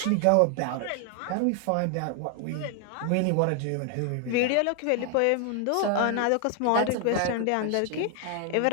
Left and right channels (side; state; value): both; different; correlation 0.00